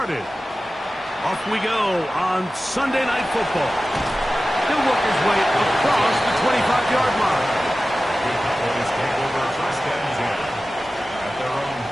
Off we go on Sunday Night Football. He'll work his way across the 25-yard line. The Cowboys take over first and 10 at their own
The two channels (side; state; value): both; normal; correlation 0.95